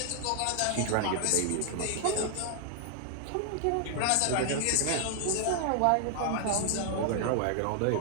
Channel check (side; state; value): both; different; correlation 0.00